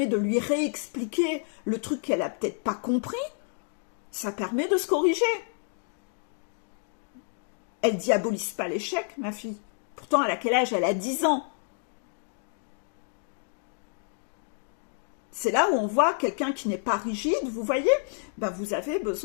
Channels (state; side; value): silent; right; 59 dB below the other